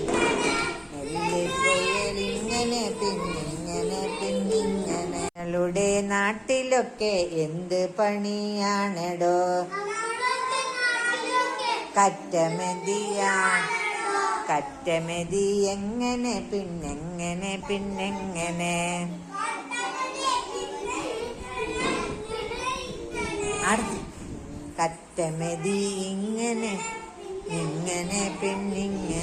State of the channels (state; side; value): identical; both; correlation 1.00